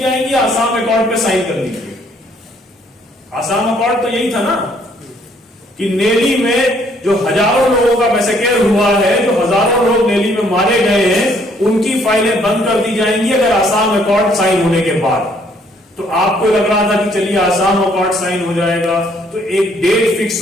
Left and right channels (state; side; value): normal; both; correlation 0.65